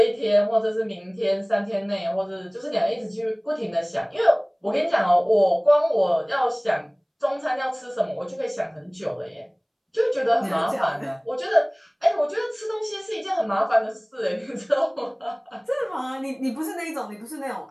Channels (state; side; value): identical; both; correlation 1.00